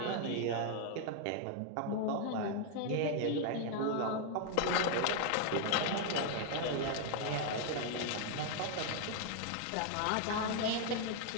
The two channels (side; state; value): both; different; correlation 0.00